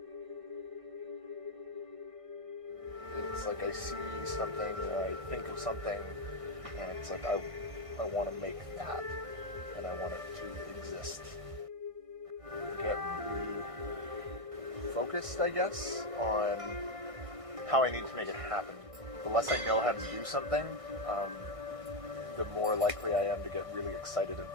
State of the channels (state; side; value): late; left; 1.6 ms